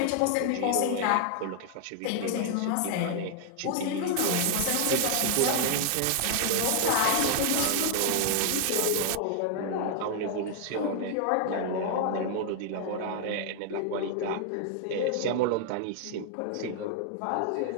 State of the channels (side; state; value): both; different; correlation 0.00